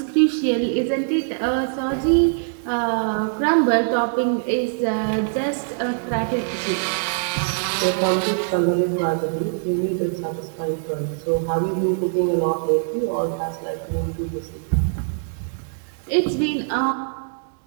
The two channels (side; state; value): left; silent; digital silence